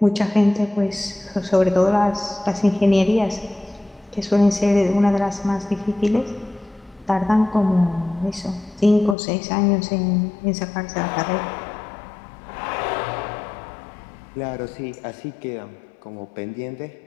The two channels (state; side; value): drops out; right; at 9.2 s